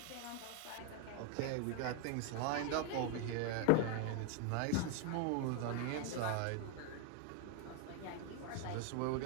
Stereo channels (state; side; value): different; both; correlation 0.00